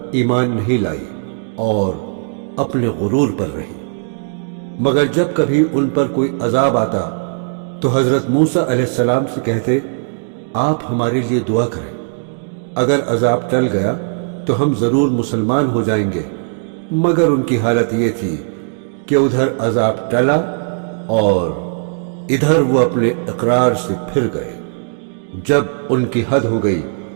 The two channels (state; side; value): silent; left; digital silence